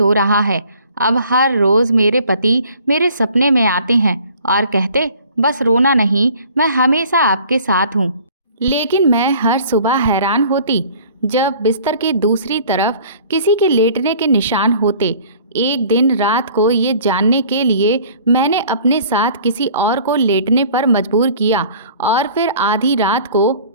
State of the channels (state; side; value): inverted; both; correlation -0.51